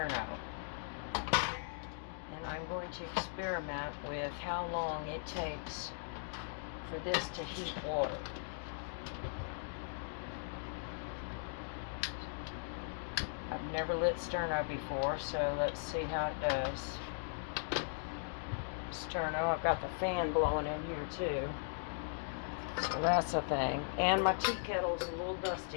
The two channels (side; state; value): right; silent; digital silence